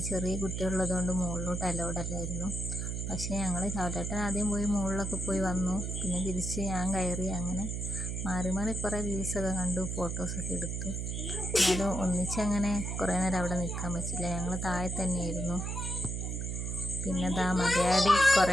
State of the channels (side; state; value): right; noise; hum, 3 dB below the sound